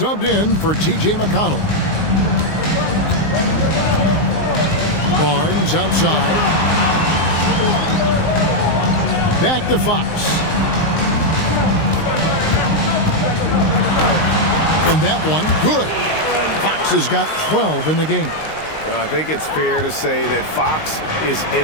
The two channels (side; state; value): right; late; 19 ms